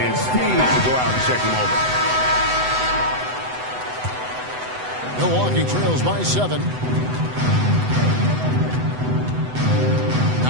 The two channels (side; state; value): left; late; 8.0 ms